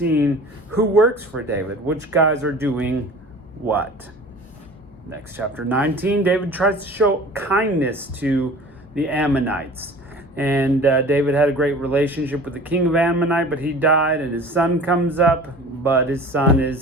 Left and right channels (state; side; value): normal; both; correlation 0.42